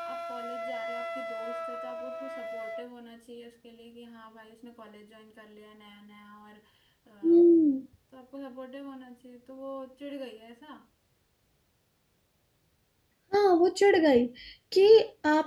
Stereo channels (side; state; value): both; identical; correlation 1.00